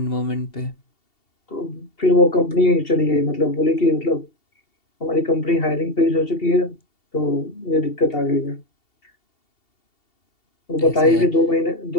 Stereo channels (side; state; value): right; late; 2.7 ms